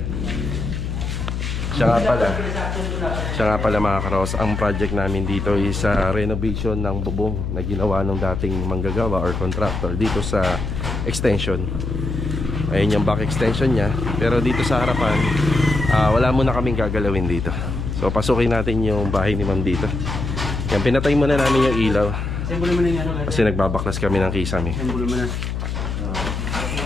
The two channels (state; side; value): noise; left; hum, 3 dB below the sound